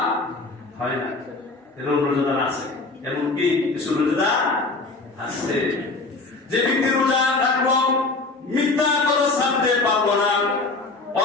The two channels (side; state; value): right; quieter; 3.5 dB